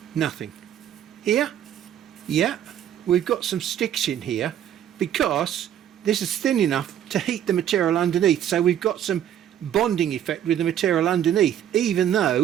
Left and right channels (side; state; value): left; quieter; 10.4 dB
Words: Nothing. Here? Yeah, we've got some sticks in here because this is thin enough to heat the material underneath. So we've got some bonding effect with the material underneath, even